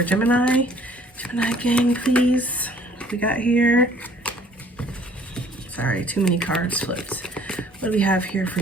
Gemini. Gemini gang, please. What we got here? Sorry, too many cards flipped. What do we have here for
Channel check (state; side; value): normal; both; correlation 0.56